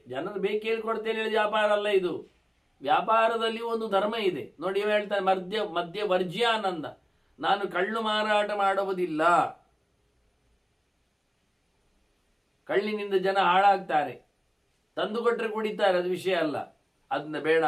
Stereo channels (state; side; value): identical; both; correlation 1.00